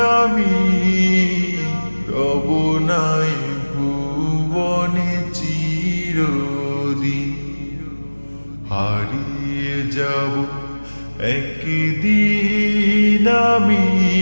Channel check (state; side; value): inverted; both; correlation -1.00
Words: আমি, রব নাই ভুবনে চিরদিন। হারিয়ে যাব একদিন আমি,